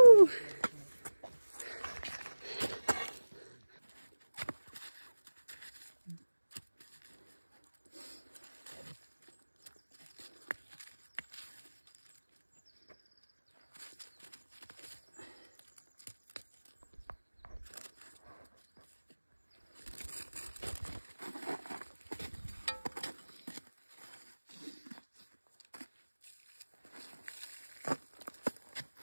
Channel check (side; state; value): both; inverted; correlation -1.00